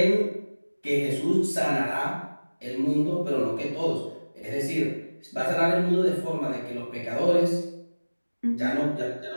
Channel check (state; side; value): inverted; both; correlation -1.00